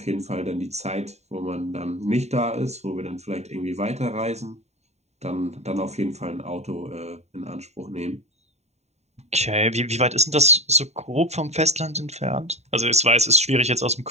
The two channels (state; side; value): late; left; 0.32 ms